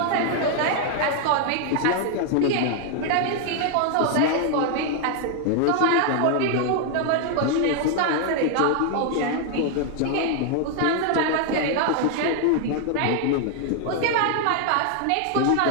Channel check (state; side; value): different; both; correlation 0.00